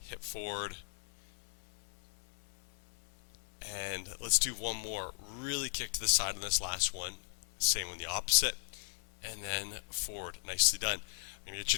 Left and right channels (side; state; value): right; silent; 53 dB below the other